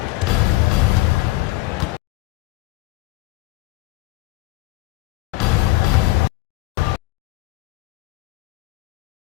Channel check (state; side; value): quieter; right; 19.7 dB